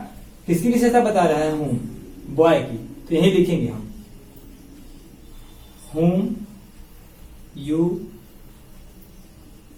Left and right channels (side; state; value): both; identical; correlation 1.00